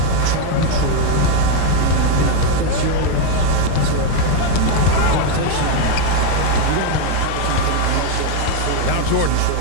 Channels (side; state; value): both; different; correlation 0.02